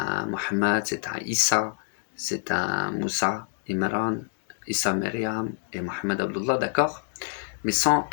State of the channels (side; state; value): right; silent; digital silence